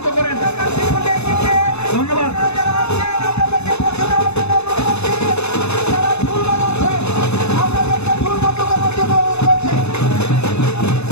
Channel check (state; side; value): late; right; 0.80 ms